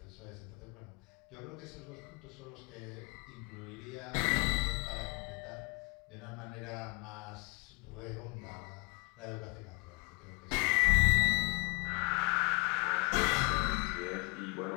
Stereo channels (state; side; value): quieter; right; 30.2 dB